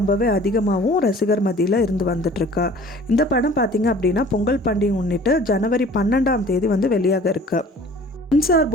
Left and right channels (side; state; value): both; normal; correlation 0.48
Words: அதிகமாகவும் ரசிகர் மத்தியில் இருந்து வந்துட்டுருக்கு. இந்த படம் பார்த்திங்க அப்படின்னா பொங்கல் பண்டிகை முன்னிட்டு ஜனவரி 12ஆம் தேதி வந்து வெளியாக இருக்குது. சென்சார்